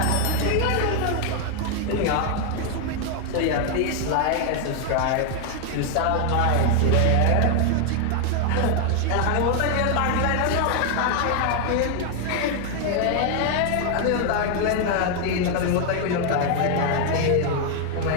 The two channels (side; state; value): both; different; correlation 0.00